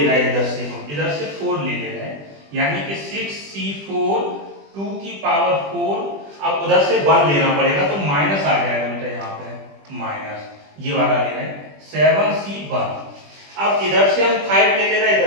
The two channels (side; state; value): left; late; 20 ms